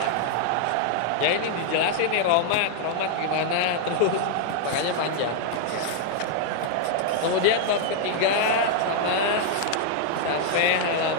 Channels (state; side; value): different; both; correlation -0.01